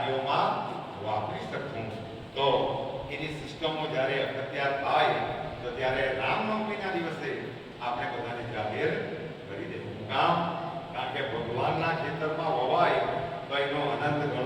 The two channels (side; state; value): both; identical; correlation 1.00